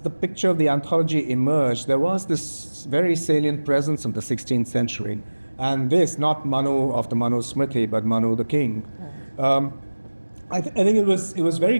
the picture of the anthology emerged, there was this very salient presence of the 16th century, and this, not Manu of the Manu Smriti, but Manu the king. I think it was very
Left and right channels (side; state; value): both; inverted; correlation -1.00